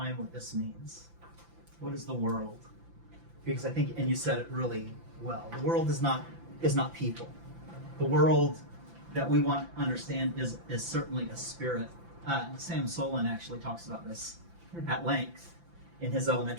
what this means. What is the world? Because I think, and you said it really well, the world is not people. The world that we want to understand is certainly a spirit. Sam Solon actually talks about this at length in his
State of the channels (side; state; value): left; late; 5.9 ms